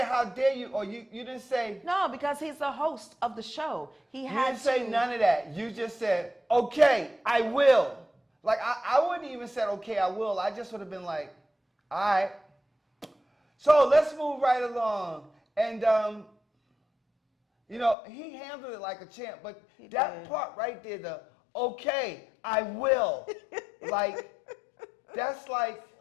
how dare you, or you didn't say. No, because he's the host of the show. You didn't say none of that. You just said, okay, I will. Like, I wouldn't even said, okay, I will. I just would have been like, all right. So let's move right along. And, he handled it like a champ. But that part right there, the okay, I will. That's like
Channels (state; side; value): drops out; right; at 17.9 s